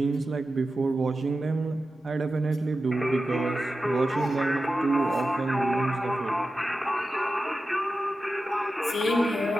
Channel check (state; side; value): normal; both; correlation 0.92